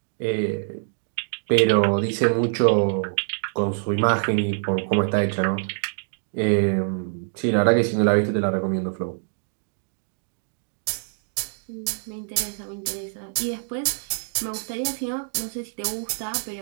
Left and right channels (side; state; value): left; silent; digital silence